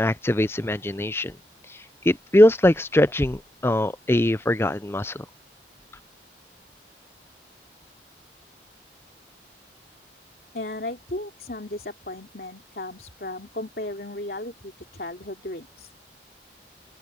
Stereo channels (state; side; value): normal; both; correlation 0.82